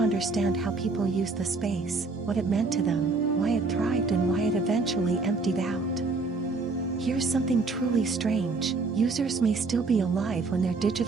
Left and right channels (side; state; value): left; quieter; 3.9 dB